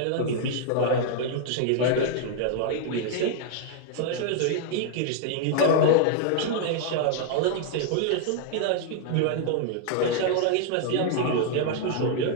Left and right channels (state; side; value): different; both; correlation 0.00